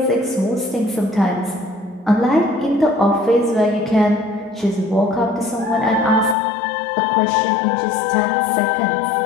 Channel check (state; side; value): drops out; right; at 6.4 s